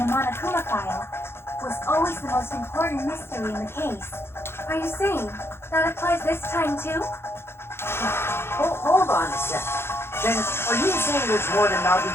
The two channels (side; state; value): right; late; 0.12 ms